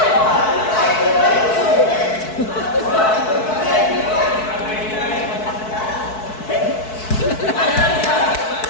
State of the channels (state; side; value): late; right; 4.6 ms